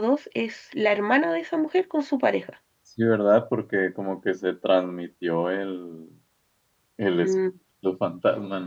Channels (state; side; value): identical; both; correlation 1.00